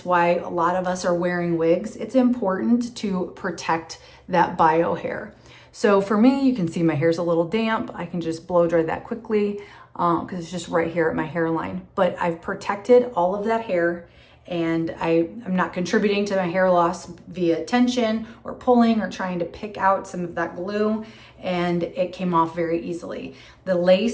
why a lot of us are wearing wigs, it's important to protect that bio hair. So for me, you can see my hair's a little damp. I can just blow dry that quickly because it's just right here at my hairline. But I've protected all of that hair and I'm not contributing to my hair loss via tension or pulling or trying to pick out some of that glue, and it came off very easily. The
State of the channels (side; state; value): both; identical; correlation 1.00